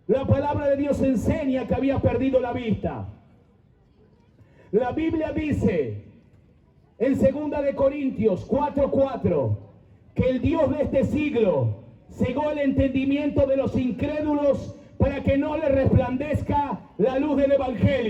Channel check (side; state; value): both; identical; correlation 1.00